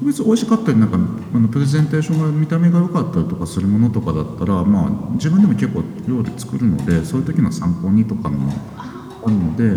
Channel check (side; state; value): both; identical; correlation 1.00